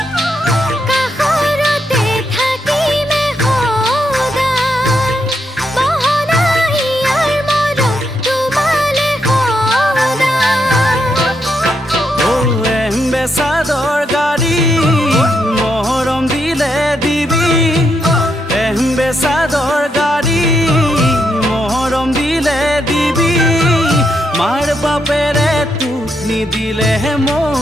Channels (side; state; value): both; normal; correlation 0.79